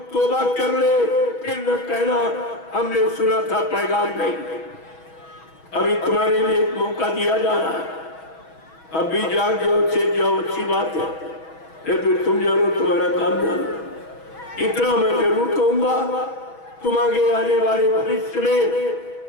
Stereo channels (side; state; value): right; late; 6.2 ms